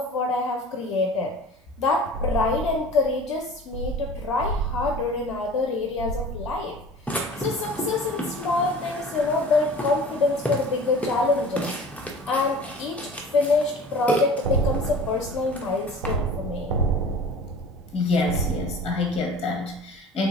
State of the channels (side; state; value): both; normal; correlation 0.41